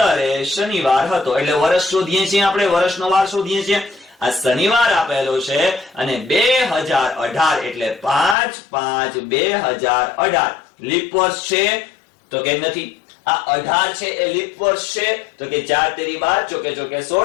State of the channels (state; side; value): drops out; right; at 8.3 s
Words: એ શનિવાર હતો. એટલે વર્ષ શોધીએ છીએ આપણે, વર્ષનો વાર શોધીએ છીએ. આ શનિવાર આપેલો છે અને 2018 એટલે 5/5/2018 લીપ વર્ષ છે તો કે નથી. આ 18 છે એ લીપ વર્ષ છે તો કે 4 તેરી 12 ચોકે ચોકે